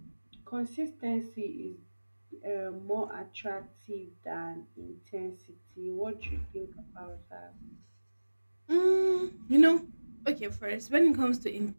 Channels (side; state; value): both; inverted; correlation -1.00